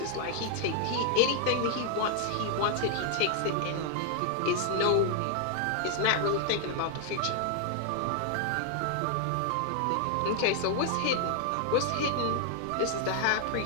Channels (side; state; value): both; different; correlation 0.00